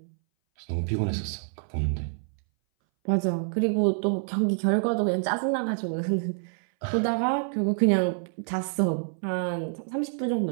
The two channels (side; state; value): left; silent; 59 dB below the other